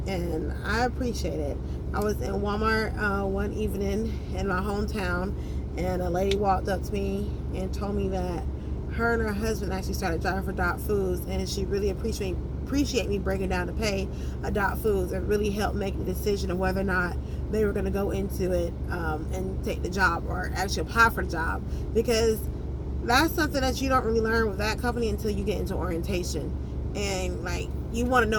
and I appreciate it. I was in Walmart one evening in my hometown, and a lady walked up to me and told me that her and her husband actually started driving for Dot Foods, and she really appreciate me breaking down to pay a Dot Foods and really helped make the decision of whether or not they were going to go into it and take the job or actually apply for the job, because that's something that you don't really learn with that company until you get into orientation. And like, you want to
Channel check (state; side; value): identical; both; correlation 1.00